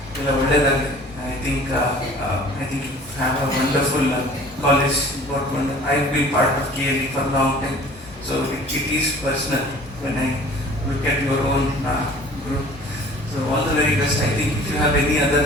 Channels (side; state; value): both; normal; correlation 0.48